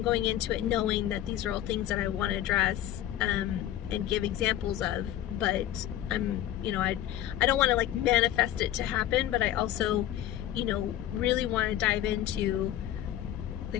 into it knowing that these are all things that I want to address, and give examples of, but you know, I don't want to like manifest it to happen, but I also, you know, really want to dive into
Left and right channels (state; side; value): quieter; right; 12.5 dB